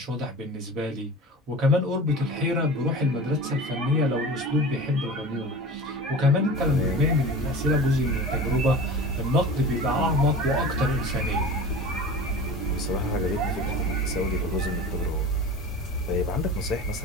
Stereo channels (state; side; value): normal; both; correlation 0.35